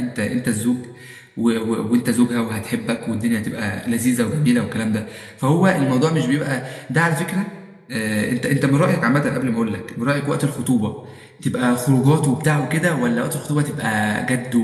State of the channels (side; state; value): both; identical; correlation 1.00